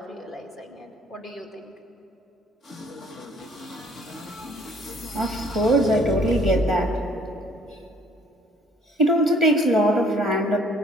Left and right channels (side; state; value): both; normal; correlation 0.59